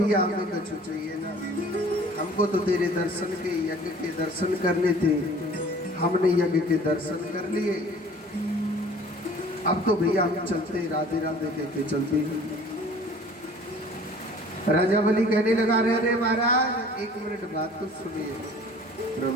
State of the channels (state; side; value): normal; both; correlation 0.49